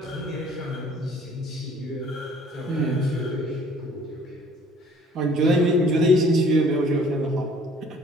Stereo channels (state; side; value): normal; both; correlation 0.55